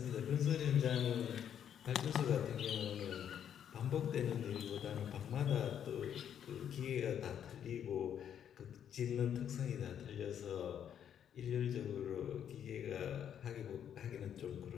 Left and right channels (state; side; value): quieter; right; 9.2 dB